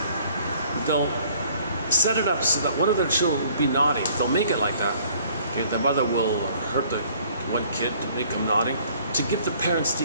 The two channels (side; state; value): both; inverted; correlation -0.57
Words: they'll set it up so that one of their children will be naughty. They'll make it like that. Okay, the mother will hurt the one kid to make him naughty, to give the parents the